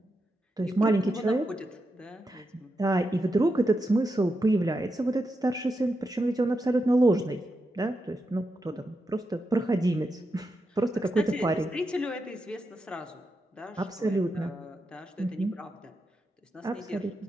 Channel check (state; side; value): normal; both; correlation 0.86